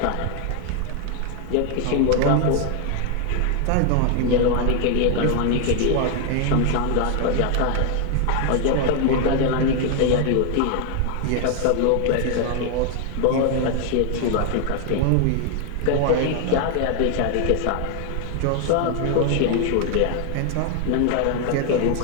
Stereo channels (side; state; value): both; different; correlation 0.00